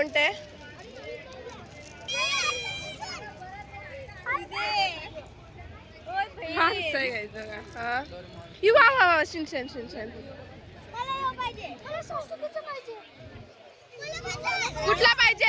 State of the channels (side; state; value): both; identical; correlation 1.00